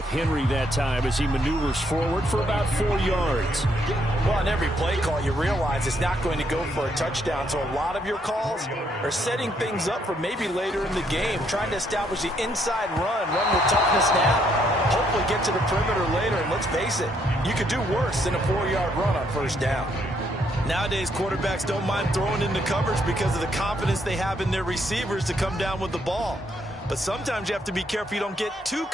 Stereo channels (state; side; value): normal; both; correlation 0.72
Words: Henry that time as he maneuvers forward for about 4 yards. Well, on every play call, you realize it's not going to go for a touchdown. So a lot of your calls are setting things up for maybe later in the game, trying to establish the inside run with toughness now, hopefully get to the perimeter later. And let's face it, you could do worse than a 4-yard run on first down. Nowadays, quarterbacks don't mind throwing into coverage because of the confidence they have in their receivers to come down with the ball. But sometimes you have to be careful you don't get too